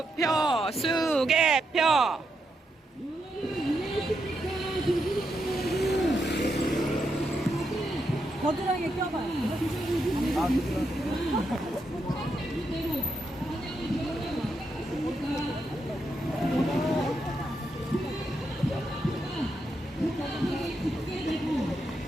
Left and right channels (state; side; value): normal; both; correlation 0.82